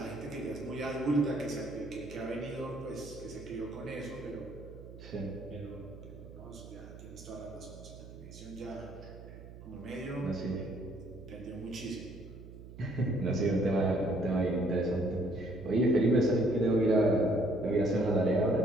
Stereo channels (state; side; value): noise; right; hum, 15 dB below the sound